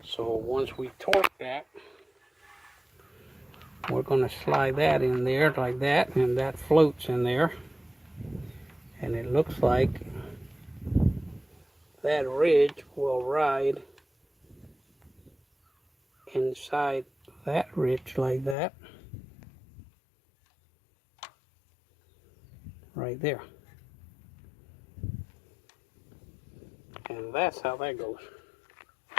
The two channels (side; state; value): right; drops out; at 18.6 s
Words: So once we torque that, we're going to slide that in there like that, and that floats in there. And it looks like that ridge will ride inside that ridge like that. Right there. And that's how that goes.